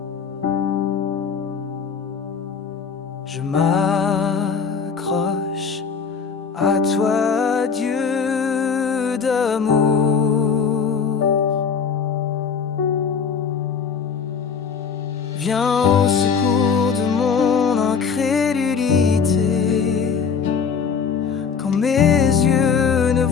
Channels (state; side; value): quieter; right; 6.0 dB